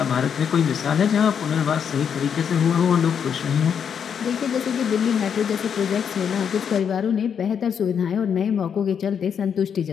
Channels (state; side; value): quieter; right; 7.5 dB